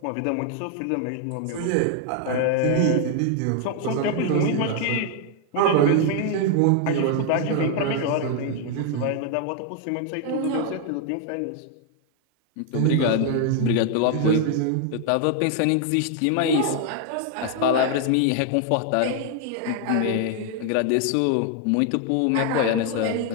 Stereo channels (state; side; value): different; both; correlation 0.00